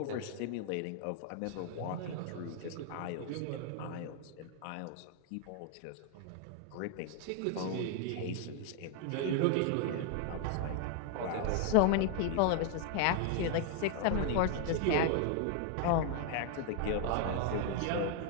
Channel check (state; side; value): different; both; correlation 0.00